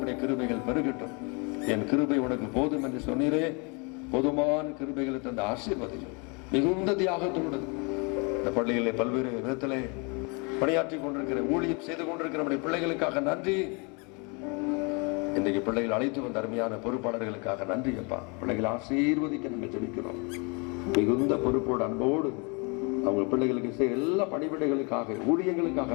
கிருபைகள் பெருகட்டும். என் கிருபை உனக்கு போதும் என்று சொன்னீரே. போதுமான கிருபைகளை தந்த ஆசீர்வதியும் மிகுந்த தியாகத்தோடு இந்த பள்ளிகளில் பல்வேறு விதத்திலே பணியாற்றி கொண்டிருக்கிற, ஊழியம் செய்து கொண்டிருக்கிற நம்முடைய பிள்ளைகளுக்காக நன்றி. இன்றைக்கு பிள்ளைகள் அழைத்து வந்த அருமையான பொறுப்பாளர்களுக்காக நன்றி அப்பா. பிள்ளைகளை ஆசீர்வதிக்க நம்ம ஜெபிக்கிறோம். மிகுந்த பொறுப்போடு அன்போடு அவங்க பிள்ளைகளுக்கு செய்ய எல்லா பணிவிடைகளுக்காக,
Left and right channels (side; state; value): right; quieter; 32.2 dB